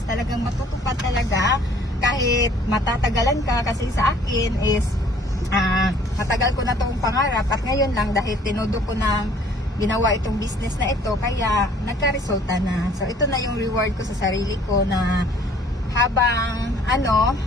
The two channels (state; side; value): normal; both; correlation 0.56